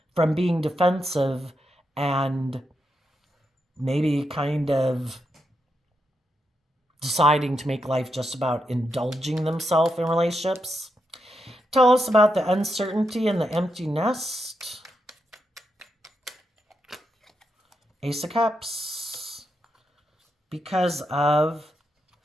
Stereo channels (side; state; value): both; normal; correlation 0.84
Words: from being defensive and maybe kind of deciding to make life just about indulging themselves in relationships. Tell us about the uncertainty and the empty nest. Ace of Cups. Because of